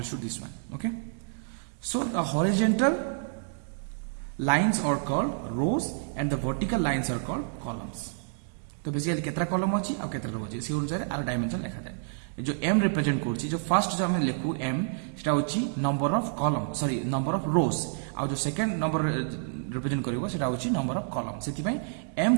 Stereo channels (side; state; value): left; silent; digital silence